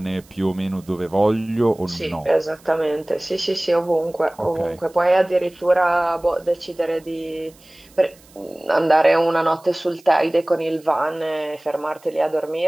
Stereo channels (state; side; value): noise; right; hiss, 27 dB below the sound